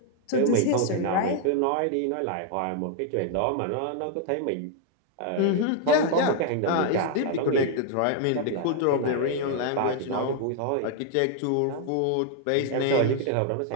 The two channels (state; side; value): different; both; correlation 0.00